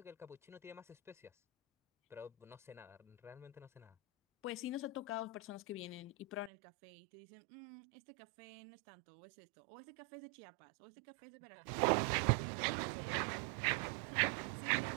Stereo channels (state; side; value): drops out; left; at 6.5 s